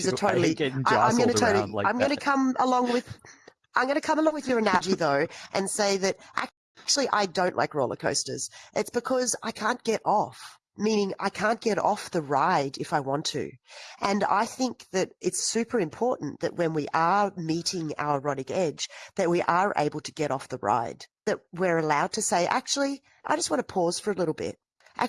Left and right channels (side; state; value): both; identical; correlation 1.00